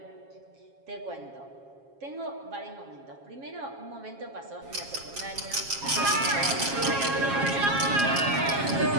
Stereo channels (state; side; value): late; left; 7.3 ms